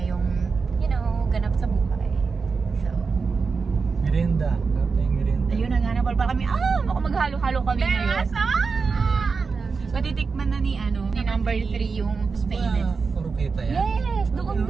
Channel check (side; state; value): left; quieter; 4.9 dB